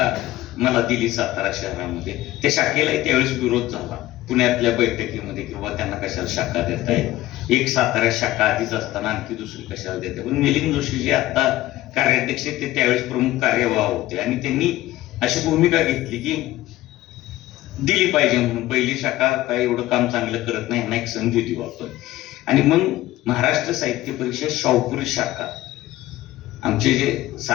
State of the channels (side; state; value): right; quieter; 16.0 dB